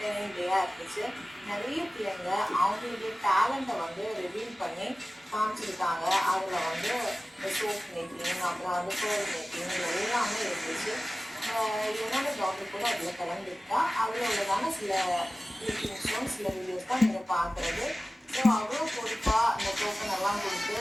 டேயாக இருந்துச்சு. நிறைய பிள்ளைங்க அவங்களுடைய டேலண்ட்டை வந்து ரிவீல் பண்ணி காமிச்சிருக்காங்க. அதில் வந்து சோப் மேக்கிங், அப்புறம் வந்து ஃபோர் மேக்கிங், எல்லாமே இருந்துச்சு. என்னோட டாக்டர் கூட அதில் கலந்துருக்கா. அதில் உள்ளதான சில கிளிப்பிங்ஸும் சில வீடியோஸ் தான் நீங்கள் பார்க்குறது. ஸோ அவ்வளோ பொறுப்பாக அந்த டோக்கன் எல்லாம் கொடுத்து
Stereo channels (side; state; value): both; normal; correlation 0.97